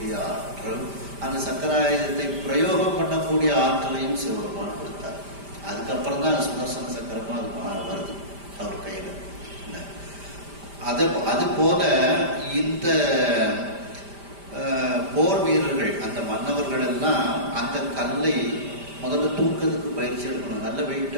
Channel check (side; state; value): left; late; 5.1 ms